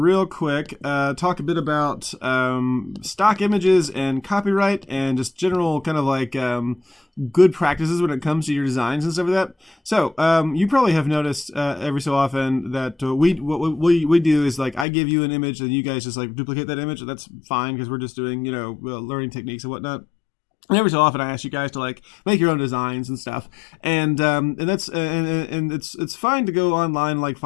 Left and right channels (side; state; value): right; drops out; at 14.9 s